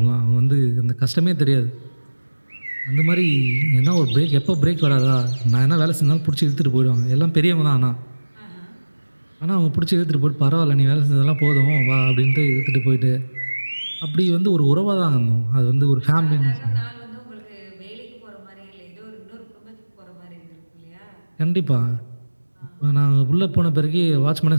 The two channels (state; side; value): inverted; both; correlation -1.00